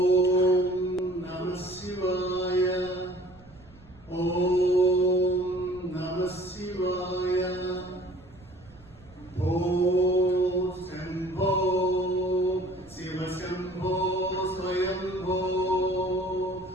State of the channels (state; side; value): noise; right; rumble, 25 dB below the sound